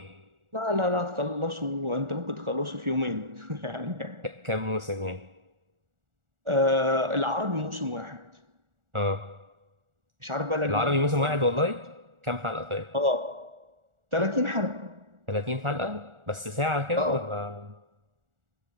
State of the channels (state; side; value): late; left; 1.4 ms